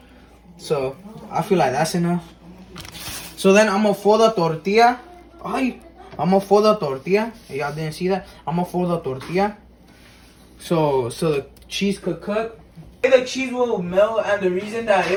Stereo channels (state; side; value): identical; both; correlation 1.00